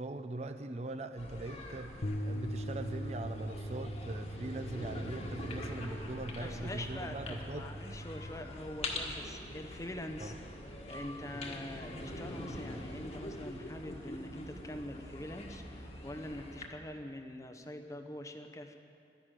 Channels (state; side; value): normal; both; correlation 0.67